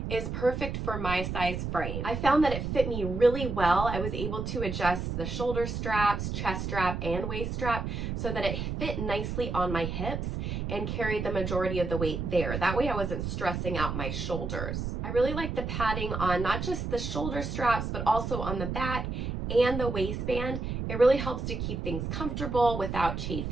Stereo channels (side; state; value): right; noise; rumble, 3 dB below the sound